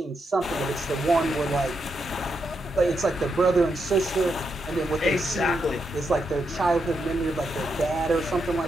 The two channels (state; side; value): normal; both; correlation 0.82